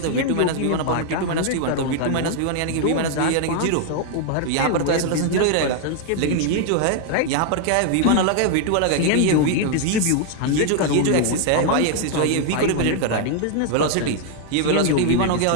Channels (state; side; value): different; both; correlation 0.00